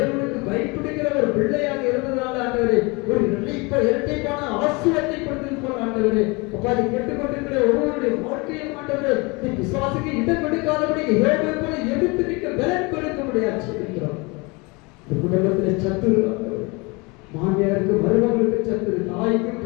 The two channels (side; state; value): right; quieter; 27.3 dB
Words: பயப்படுகிற ஒரு பிள்ளையாக இருந்ததுனால, ஆண்டவரே ஒரு இரட்டைப்பான ஆசீர்வாதத்தை கொடுத்திருப்போம். ஆண்டவரே அப்பா, அதை கேட்டுக்கொண்டிருக்கிற ஒவ்வொருடைய வாழ்க்கையும் ஆண்டவரே நீ பிசாசுக்கு இடம் கொடுக்காதபடி யோபை போல எதிர்த்து நிற்க பலன் கொடுக்க முடியாது சொல்லிக்கிறோம். இந்த குடும்பத்திலே சத்துரு, மாமியாருக்கு மருமகளுக்கு சத்துரு, தாய்க்கு